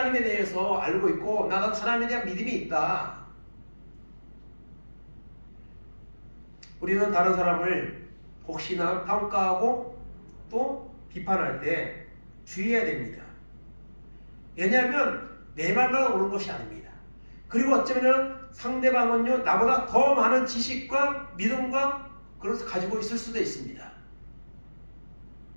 대해서 알고 있고 나도 하나님에 대한 믿음이 있다. 우리는 다른 사람을 혹시나 평가하고 또 비판할 때 주의해야 됩니다. 왜냐하면 내 말만 옳은 것이 아닙니다. 그리고 어쩌면 상대방은요 나보다 더 많은 지식과 믿음과 그것을 가지고 있을 수도 있습니다.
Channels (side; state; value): both; inverted; correlation -1.00